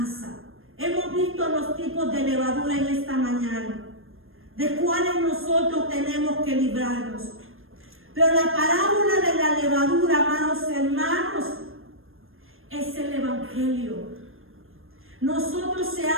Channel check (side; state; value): left; late; 0.60 ms